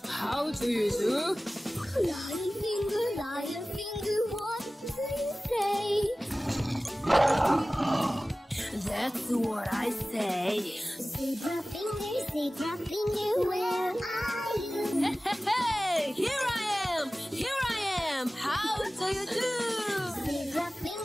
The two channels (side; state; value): both; normal; correlation 0.97